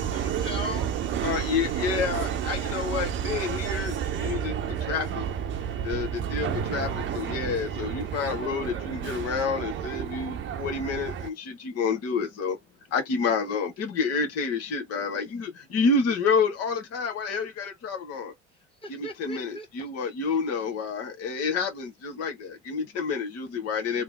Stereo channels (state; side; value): normal; both; correlation 0.20